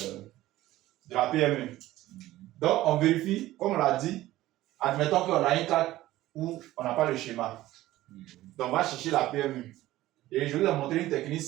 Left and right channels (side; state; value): left; quieter; 15.9 dB